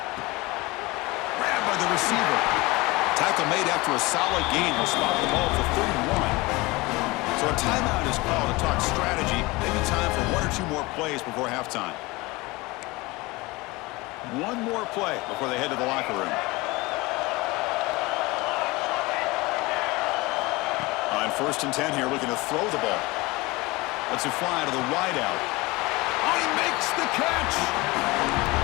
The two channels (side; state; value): right; quieter; 22.6 dB